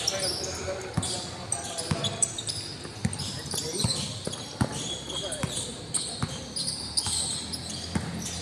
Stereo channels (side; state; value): both; identical; correlation 1.00